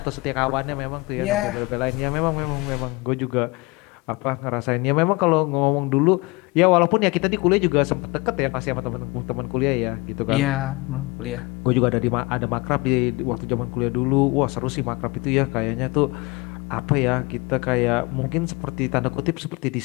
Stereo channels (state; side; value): quieter; right; 24.8 dB